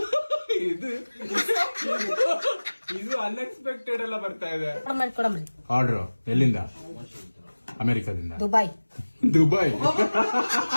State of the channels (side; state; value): both; inverted; correlation -1.00